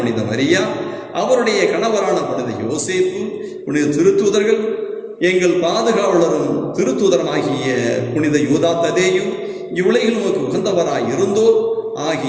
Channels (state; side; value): identical; both; correlation 1.00